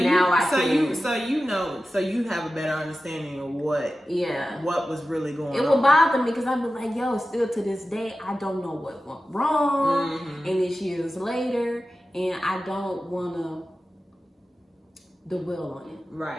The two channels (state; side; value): normal; both; correlation 0.94